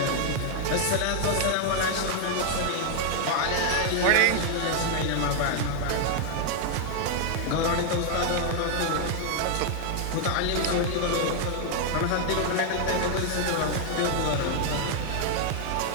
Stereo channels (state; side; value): different; both; correlation 0.00